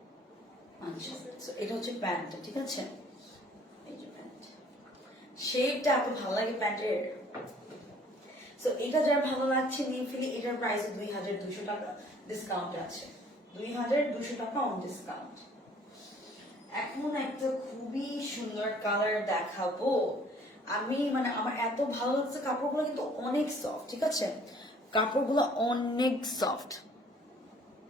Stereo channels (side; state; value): both; normal; correlation 0.57